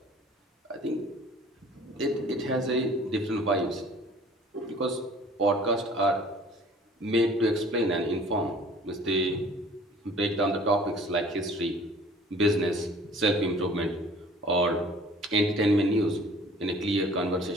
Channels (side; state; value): both; normal; correlation 0.50